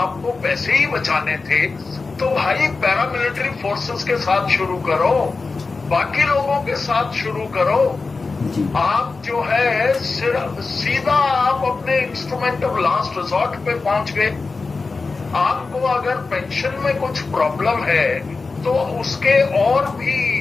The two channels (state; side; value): quieter; right; 4.1 dB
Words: पैसे ही बचाने थे तो भाई पैरामिलिट्री फोर्सेस के साथ शुरू करो, बाकी लोगों के साथ शुरू करो। आप जो है सिर्फ सीधा आप अपने इंस्ट्रूमेंट ऑफ लास्ट रिजॉर्ट पे पहुंच गए। आपको अगर पेंशन में कुछ प्रॉब्लम है तो उसके और भी